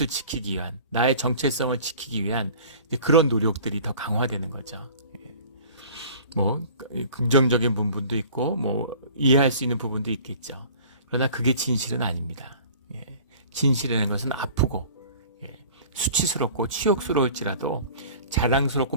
지키기 위한, 나의 정체성을 지키기 위한 그런 노력들이 더 강화되는 거죠. 긍정적인 부분도 있고 이해할 수 있는 부분도 있겠죠. 그러나 그게 진실은 아닙니다. 진실이라는 것은 아프고 수치스럽고 치욕스러울지라도 자랑스럽고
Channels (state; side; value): inverted; both; correlation -0.46